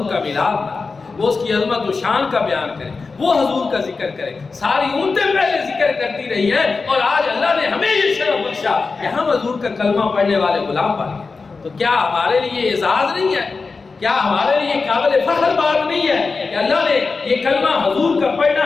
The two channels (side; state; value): right; quieter; 4.3 dB